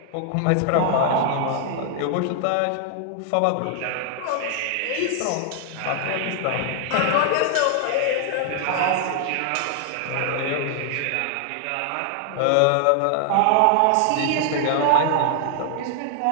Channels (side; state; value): both; different; correlation 0.00